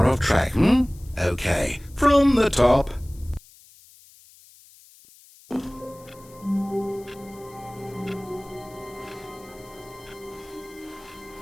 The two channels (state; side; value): noise; left; hiss, 25 dB below the sound